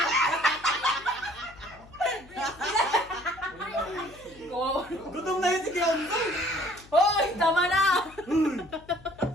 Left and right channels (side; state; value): left; noise; hum, 23 dB below the sound